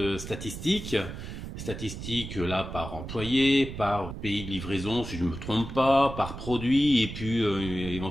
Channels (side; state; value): right; noise; rumble, 9 dB below the sound